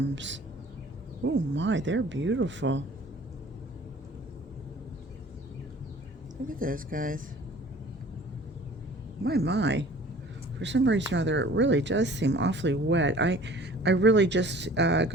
Oh my, they're beautiful. Look at those guys. My. For some reason or other, it really does seem awfully wet. I really just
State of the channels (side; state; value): both; normal; correlation 0.48